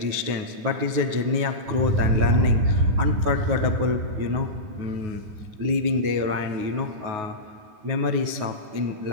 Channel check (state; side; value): late; left; 9.4 ms